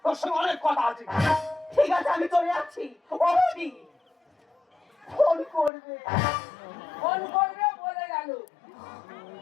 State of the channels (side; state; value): right; drops out; at 5.7 s